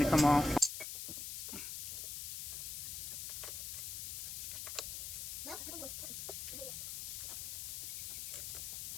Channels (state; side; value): noise; left; hiss, 5 dB below the sound